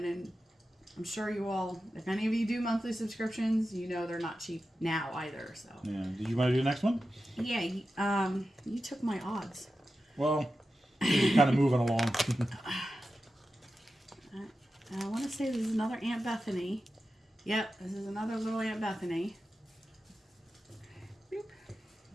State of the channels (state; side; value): normal; both; correlation 0.92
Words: I'm sure you all, if any of you do monthly subscriptions, you know they're not cheap now either. So Yeah. Did you want to do the next one? yeah, you took my odds. Well, you're kind of moving along. I want to say this is another Aunt Bethany. Yep, this is another little Aunt Bethany. Boop.